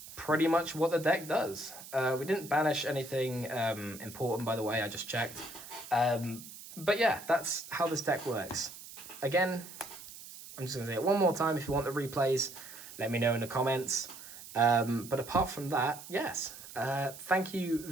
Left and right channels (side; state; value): right; noise; hiss, 15 dB below the sound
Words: pretty much what the deck does. We didn't banish anything important, by the way. I just checked. But yeah, that's how this deck works. Again, I'm just going to say it one more time. If you want the replays, let me know in the comments. But apart from that, yes. Thank you